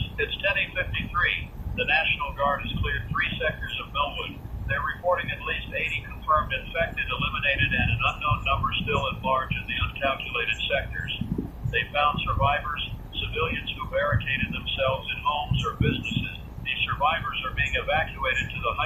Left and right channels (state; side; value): identical; both; correlation 1.00